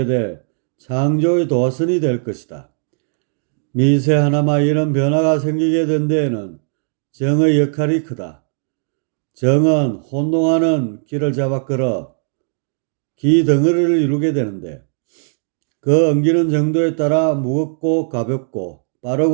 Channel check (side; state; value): left; silent; digital silence